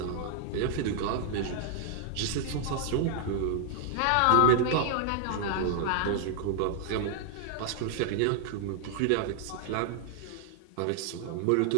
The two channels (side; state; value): both; different; correlation 0.00